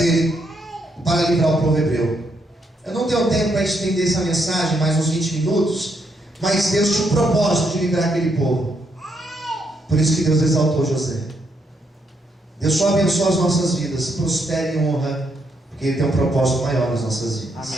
para livrar o povo hebreu. Eu não tenho tempo para estender essa mensagem, mais uns 20 minutos, mas Deus tinha um propósito de livrar aquele povo. Por isso que Deus exaltou José. Deus só abençoa as nossas vidas, prospera e honra, porque Ele tem um propósito maior nas nossas vidas.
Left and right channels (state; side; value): normal; both; correlation 0.77